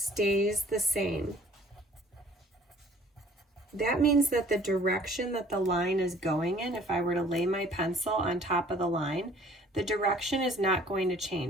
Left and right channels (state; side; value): normal; both; correlation 0.55